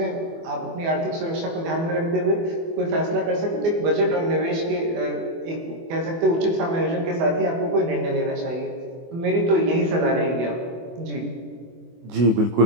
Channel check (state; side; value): late; left; 24 ms